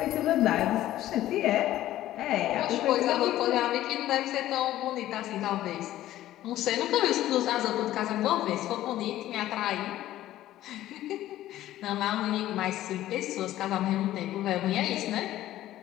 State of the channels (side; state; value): right; quieter; 14.0 dB